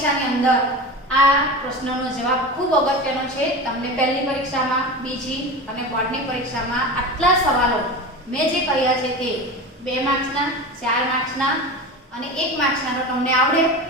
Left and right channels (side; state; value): both; normal; correlation 0.28